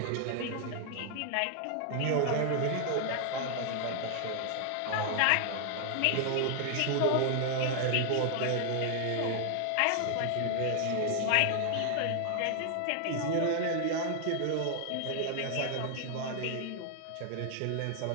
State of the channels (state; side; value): different; both; correlation 0.00